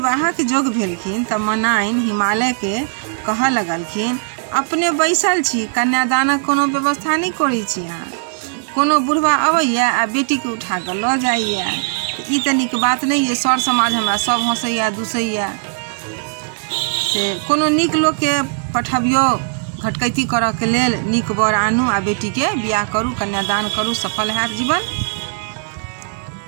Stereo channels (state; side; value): silent; left; 60 dB below the other